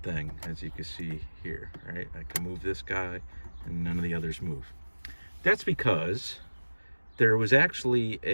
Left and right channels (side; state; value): both; inverted; correlation -1.00